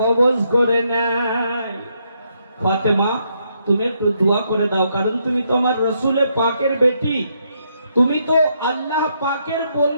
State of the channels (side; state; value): both; inverted; correlation -0.76